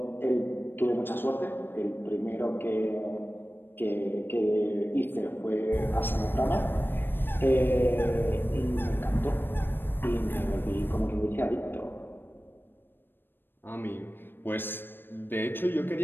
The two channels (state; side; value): late; right; 0.097 ms